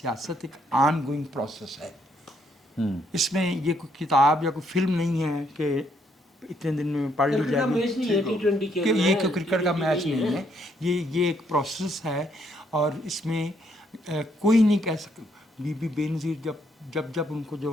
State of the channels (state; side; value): normal; both; correlation 0.72